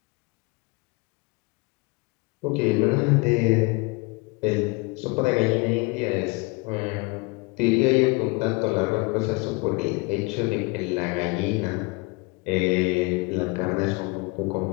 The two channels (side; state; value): right; quieter; 27.4 dB